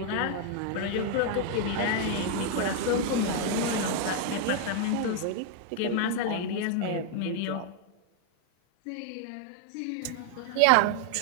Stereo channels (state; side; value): different; both; correlation 0.00